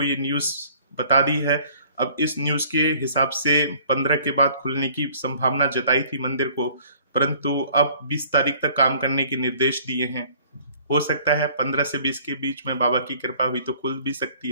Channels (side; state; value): both; inverted; correlation -0.54